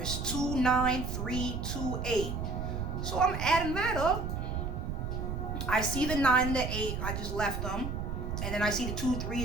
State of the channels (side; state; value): right; noise; rumble, 3 dB below the sound